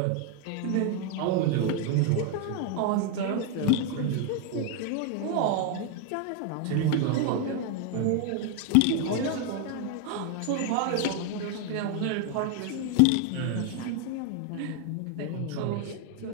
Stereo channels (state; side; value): different; both; correlation 0.01